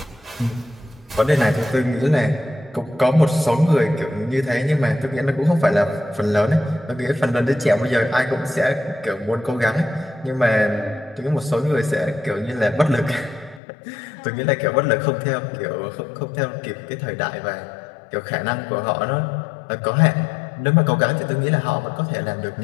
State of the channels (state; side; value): drops out; right; at 13.6 s